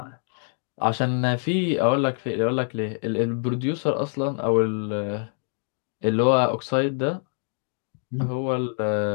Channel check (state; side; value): silent; right; 56 dB below the other